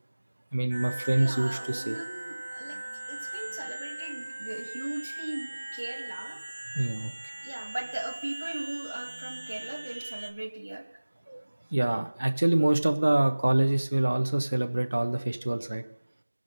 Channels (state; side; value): inverted; both; correlation -1.00